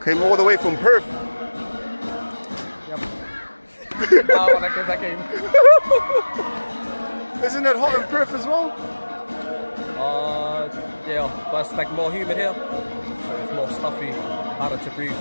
Came all the way from Perth. When I came. Isn't it hot in Perth as well? Yeah, but it's like more humid here, so it's more stuffy, harder to breathe.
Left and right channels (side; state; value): both; inverted; correlation -1.00